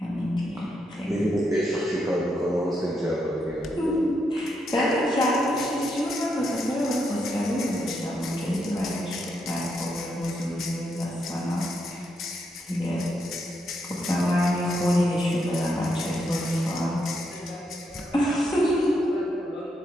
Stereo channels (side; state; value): both; normal; correlation 0.80